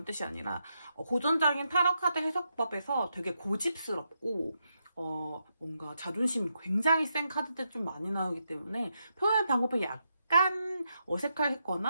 뜻이 아니라 고전적인 타로 카드 해석법에서 되게 고집스럽고 뭔가 자존심이 굉장히 센 카드들 좀 많이 나오기 때문에 표현 방법이 약간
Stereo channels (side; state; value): both; inverted; correlation -0.83